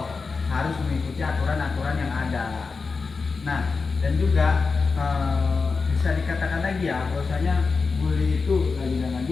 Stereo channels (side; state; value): right; quieter; 4.6 dB